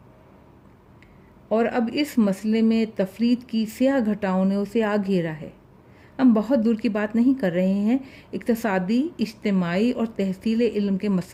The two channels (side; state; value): both; identical; correlation 1.00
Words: اور اب اس مسئلے میں تفرید کی سیاہ گھٹاؤں نے اسے آ گھیرا ہے۔ ہم بہت دور کی بات نہیں کر رہے ہیں، اقتصادی، اجتماعی اور تحصیل علم کے